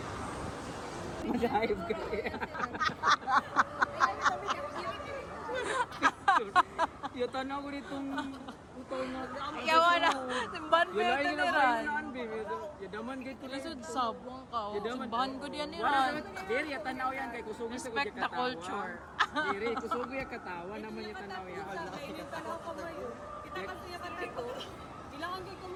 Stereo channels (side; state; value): both; identical; correlation 1.00